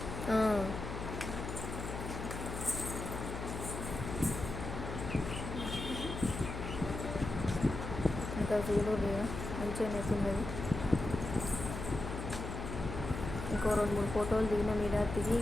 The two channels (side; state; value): left; noise; hum, 6 dB below the sound